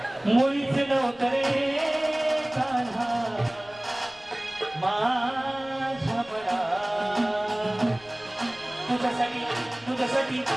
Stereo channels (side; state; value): left; noise; rumble, 25 dB below the sound